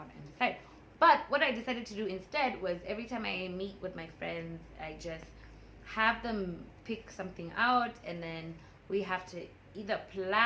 and decide. But what I decided to do instead was, every time I meet with my friends, I just have them pick something out, and then we have to either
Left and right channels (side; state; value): both; identical; correlation 1.00